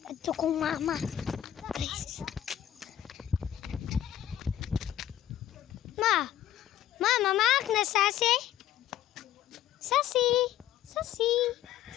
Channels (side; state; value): right; quieter; 11.8 dB